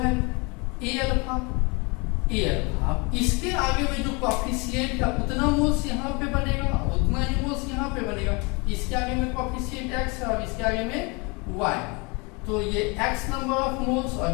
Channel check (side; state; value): right; quieter; 29.1 dB